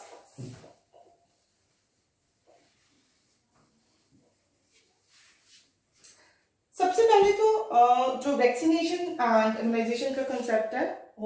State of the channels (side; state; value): both; identical; correlation 1.00